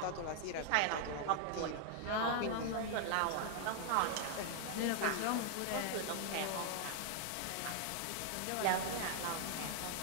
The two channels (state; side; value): different; both; correlation 0.00